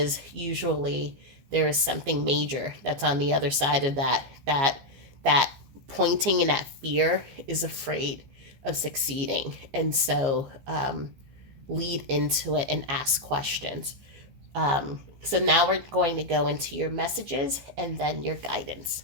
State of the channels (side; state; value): left; late; 15 ms